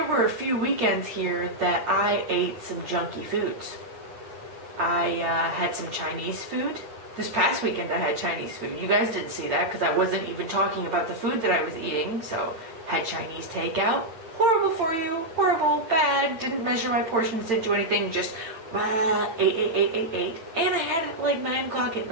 were a few weekends here that I ate some junky foods. I had some Chinese food. This past weekend I had Chinese food. You guys didn't see that because I wasn't even talking about the food that I was eating. So, had Chinese takeout. Horrible for you. Horrible. Bad. Didn't measure my portions. Didn't do anything. Just ate. And I had it at like 9 o'clock at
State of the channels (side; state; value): left; late; 8.9 ms